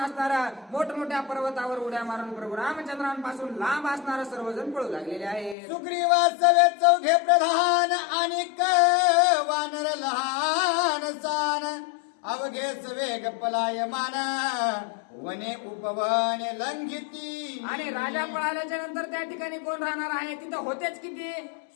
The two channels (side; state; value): right; drops out; at 5.6 s